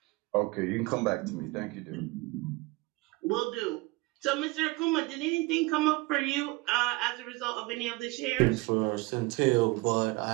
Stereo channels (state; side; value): quieter; left; 23.1 dB